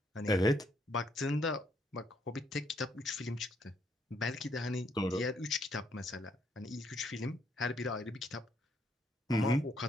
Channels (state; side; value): normal; both; correlation 0.72